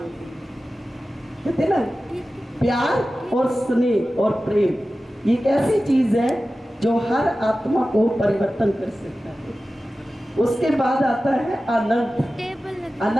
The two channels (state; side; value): normal; both; correlation 0.95